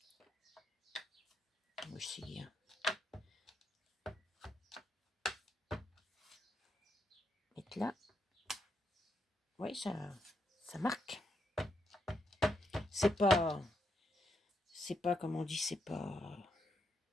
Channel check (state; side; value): normal; both; correlation 0.80